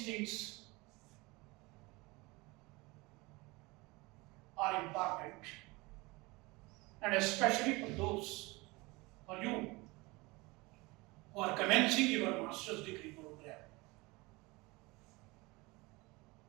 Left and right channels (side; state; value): left; quieter; 23.8 dB